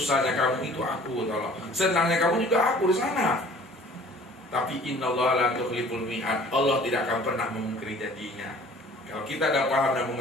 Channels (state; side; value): normal; both; correlation 0.50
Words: kamu itu aku, tolong. Senangnya kamu juga aku di sana. Tapi innallaha la tukhliful mi'ad. Allah tidak akan pernah memungkiri janjinya. Kalau kita dah paham dan